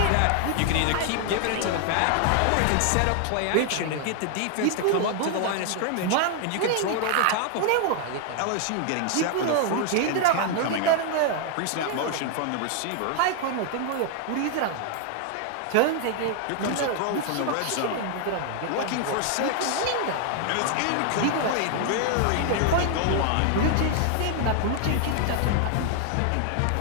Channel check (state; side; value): different; both; correlation 0.00